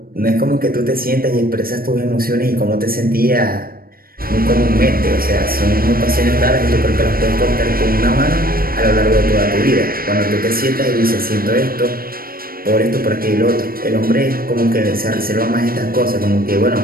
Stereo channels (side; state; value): left; late; 0.43 ms